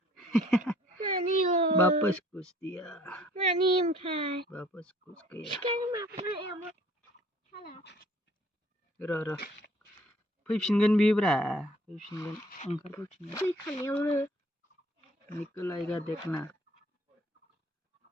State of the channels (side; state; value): both; normal; correlation 0.57